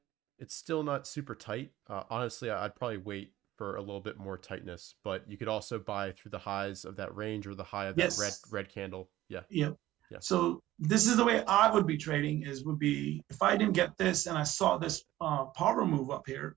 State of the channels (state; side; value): quieter; left; 15.2 dB